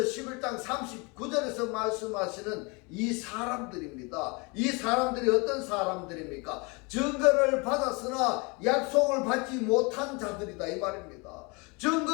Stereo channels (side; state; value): right; quieter; 29.1 dB